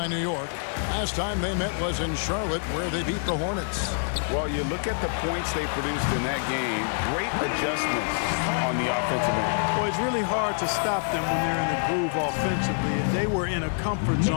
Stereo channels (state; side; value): silent; right; digital silence